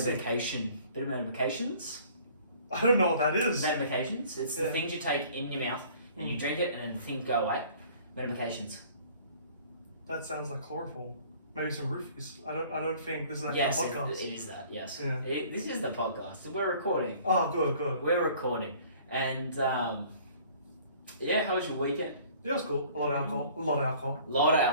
get medication. Bit of medications. I don't know what that is. Medications. It's the things you take in your mouth and you drink it and then the things go away. Medications. That sounds like chloroform. Maybe some roofies. I don't think this is like a Yes, podcast. it is that. Yes. Yeah. This is the podcast. We're recording. Oh, good. We're recording. And yeah, how was your weekend? Yeah, it was cool. A lot of alcohol. A lot of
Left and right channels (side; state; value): both; inverted; correlation -0.52